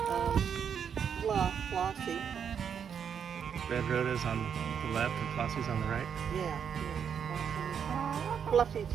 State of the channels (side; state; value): left; quieter; 7.5 dB